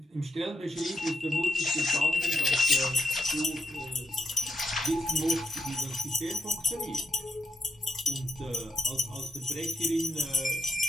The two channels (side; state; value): both; normal; correlation 0.83